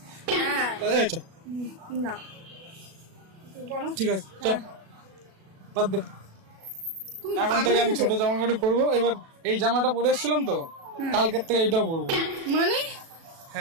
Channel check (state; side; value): late; left; 36 ms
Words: হ্যাঁ এই চল, না তুই বলো। ঠিক আছে চল বাদ দে। তুমি এখন পাগল থেকে আমি হয়েছো? ছোট জামা কাপড় পরবো। এবার এই জামাটা পরে এসেছিলাম তো কালকের থেকে এইটাও পরবো। মানে